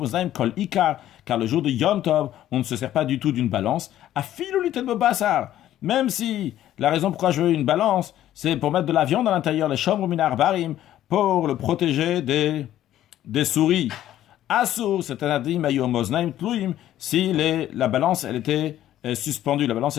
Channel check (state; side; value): quieter; right; 12.6 dB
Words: kol ikar, car le jour de Yom Tov, on ne se sert pas du tout d'une balance. Afilu litel bobasar, même si la raison pourquoi je veux une balance, c'est pour mettre de la viande à l'intérieur, les shomru minar barim, pour le protéger des souris. Asur, c'est un adim ayomoznaim tluim, si la balance, elle était suspendue. La